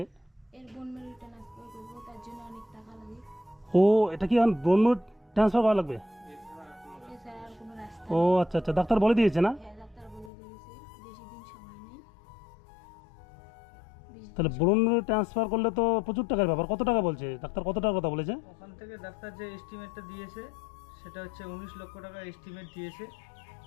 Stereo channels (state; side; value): drops out; right; at 10.3 s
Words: এর বোন ম্যারো ট্রান্সফার করবো, তার জন্য অনেক টাকা লাগে। ও, এটা কি এখন ব্রণ ট্রান্সফার করা লাগবে? এছাড়া আর কোনো রাস্তা ও নেই। আচ্ছা আচ্ছা, ডাক্তার বলে দিয়েছে না? হ্যাঁ, ডাক্তার বলে দিয়েছে বেশি দিন সময় নেই। তাহলে ব্রণ ট্রান্সফার করলে তো প্রচুর টাকার ব্যাপার। কত টাকা বলছে ডাক্তার, কত টাকার কথা বলেছে? ওখান থেকে ডাক্তার যে এস্টিমেটটা দিয়েছে সেটা হচ্ছে 19 লক্ষ টাকা এস্টিমেট দিয়েছে।